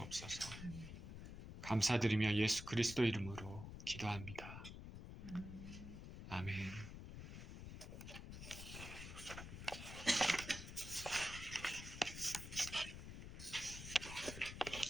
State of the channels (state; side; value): noise; left; rumble, 9 dB below the sound